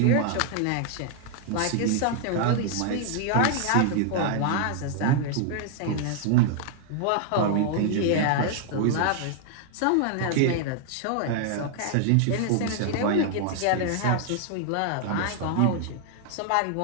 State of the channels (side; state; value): both; different; correlation 0.00